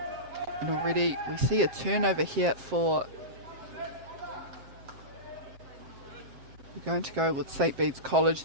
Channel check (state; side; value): late; left; 7.6 ms